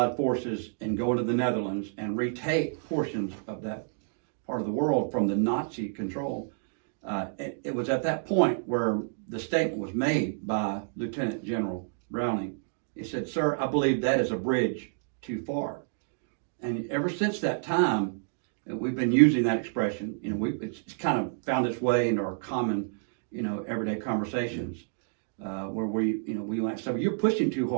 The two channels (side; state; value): left; silent; digital silence